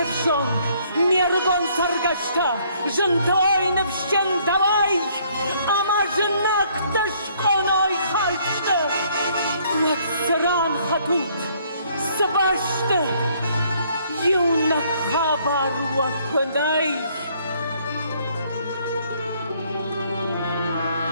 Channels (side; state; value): both; inverted; correlation -0.64